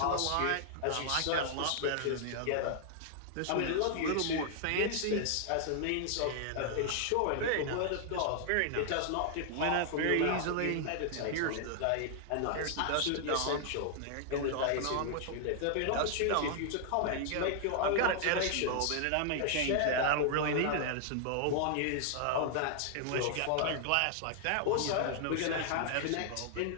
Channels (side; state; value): both; different; correlation -0.01